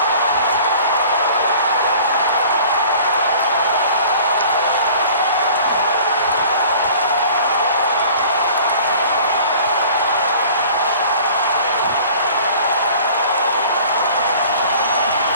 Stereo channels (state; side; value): inverted; both; correlation -0.47